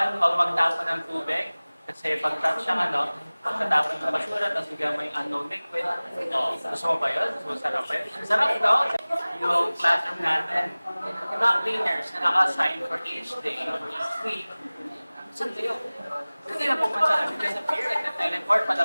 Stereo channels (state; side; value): inverted; both; correlation -0.99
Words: huwag magtapon ng tubig. Kasi pag pagkatapon ng basura, tapos bigyan mo yung unknown liquid. Gusto mo ba yun? Gusto mo sarap ba yun? Sarap no? Yung classroom natin, yung mga cleaners na naka-assign for each day or each week, saan kayo? Kasi na pupunta namin kayo sa pier, like nag-teleport,